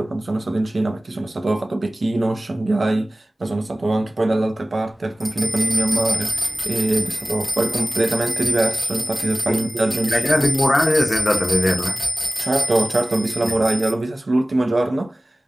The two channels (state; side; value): normal; both; correlation 0.98